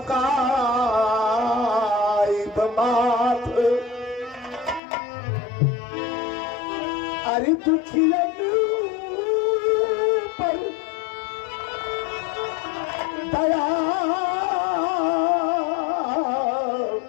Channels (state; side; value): drops out; right; at 4.8 s